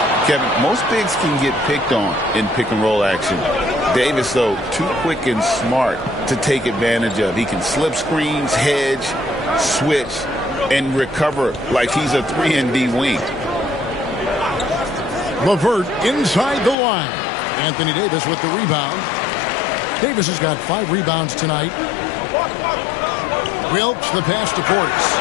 Kevin, most bigs can get picked on in pick-and-roll action. Davis, though, too quick and smart to take advantage of. He can slip screens, hedge, switch, and recover like he's a 3-and-D wing. LeVert inside the line. Anthony Davis with the rebound. Davis has got 5 rebounds tonight. Wilkes the pass to Portis.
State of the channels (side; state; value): right; drops out; at 16.8 s